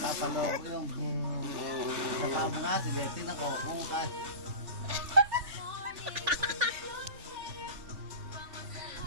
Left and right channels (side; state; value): left; late; 3.5 ms